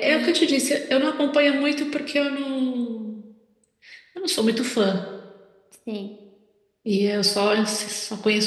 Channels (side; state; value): both; identical; correlation 1.00